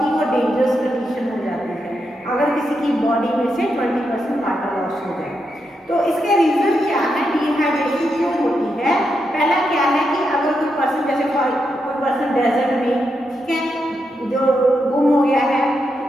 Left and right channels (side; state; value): both; normal; correlation 0.84